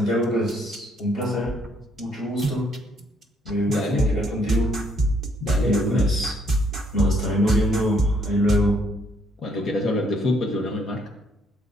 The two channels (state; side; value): normal; both; correlation 0.68